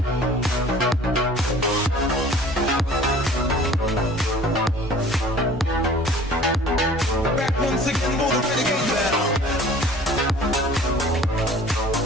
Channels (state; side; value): normal; both; correlation 0.48